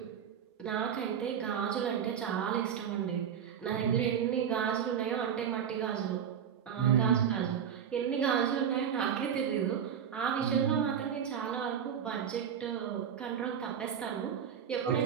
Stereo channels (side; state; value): left; quieter; 8.3 dB